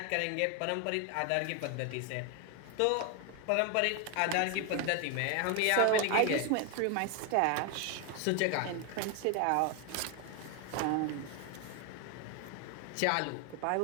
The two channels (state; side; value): different; both; correlation 0.01